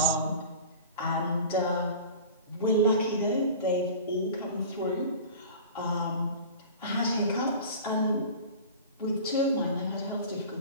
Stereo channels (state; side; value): inverted; both; correlation -0.37